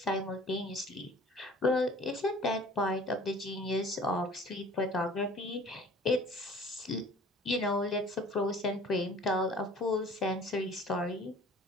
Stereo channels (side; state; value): both; normal; correlation 0.48